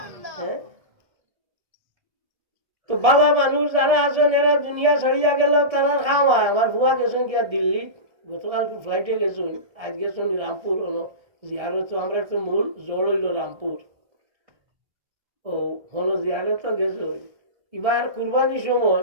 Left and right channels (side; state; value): left; late; 1.7 ms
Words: তো বালা মানুষ যারা আছেন এরা দুনিয়া ছাড়িয়া গেল তারা খাওয়ায় আমার বুয়া গেছেন কি আর দিল্লি গতকাল ফ্লাইটে গেছেন আজ গেছেন রামপুর জিয়ারত আমরা তো মূল জড় হইল রামপুর ও হলো জিয়ারত গেছে এবার কুরবানির